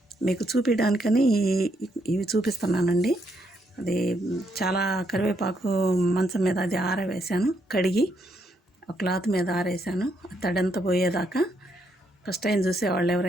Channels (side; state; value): both; normal; correlation 0.76